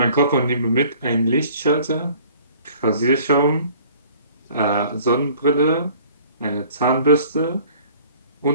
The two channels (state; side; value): inverted; both; correlation -0.52